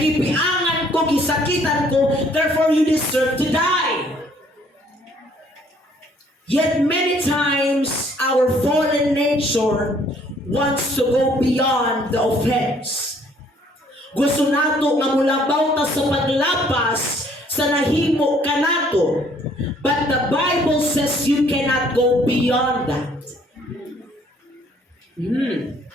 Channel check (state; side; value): normal; both; correlation 0.62